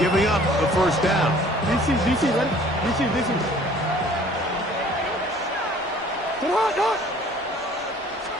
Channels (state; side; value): normal; both; correlation 0.53